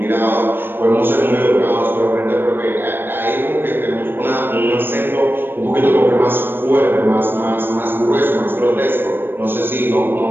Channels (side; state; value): left; late; 0.097 ms